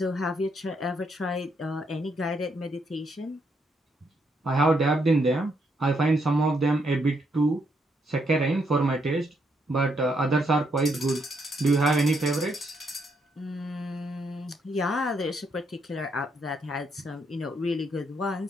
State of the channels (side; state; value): both; normal; correlation 0.76